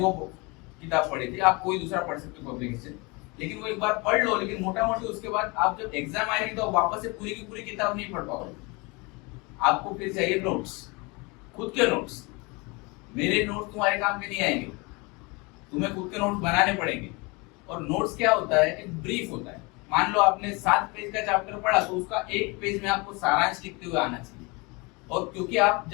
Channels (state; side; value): quieter; right; 27.5 dB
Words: किताब पढ़ी थी, आप कोई दूसरा पढ़ सकते हो पब्लिकेशन, लेकिन वो एक बार पढ़ लो। लेकिन मोटा मोटी उसके बाद आप जब एग्जाम आएगी तो वापस से पूरी की पूरी किताब नहीं पढ़ पाओगे। आपको फिर चाहिए नोट्स, खुद के नोट्स। मेरे नोट्स तुम्हारे काम के नहीं आएंगे, तुम्हें खुद के नोट्स बनाने पड़ेंगे। और नोट्स क्या होता है, एक ब्रीफ होता है। मान लो आपने 7 पेज का चैप्टर पढ़ा तो उसका 1 पेज में आपको सारांश लिखते हुए आना चाहिए। और क्योंकि आप